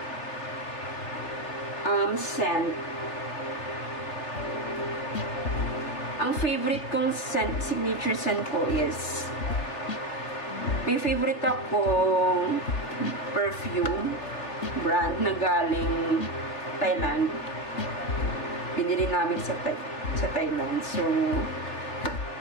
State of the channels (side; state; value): right; late; 3.3 ms